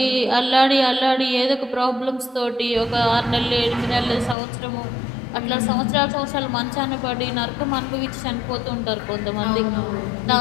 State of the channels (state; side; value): drops out; right; at 4.4 s